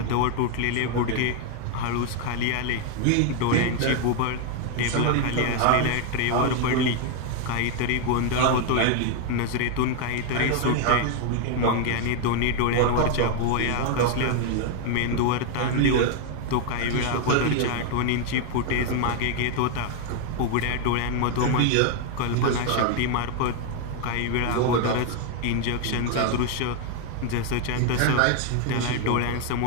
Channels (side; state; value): both; different; correlation 0.01